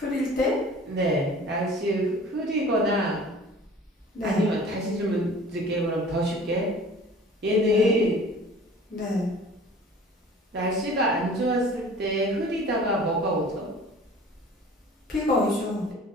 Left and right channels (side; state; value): both; normal; correlation 0.45